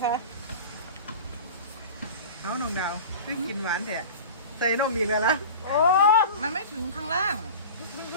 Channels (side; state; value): both; inverted; correlation -0.35